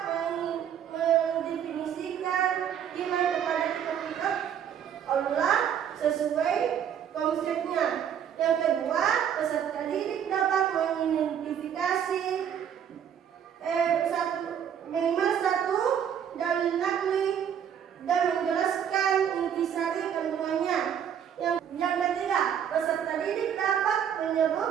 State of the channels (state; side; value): quieter; left; 8.9 dB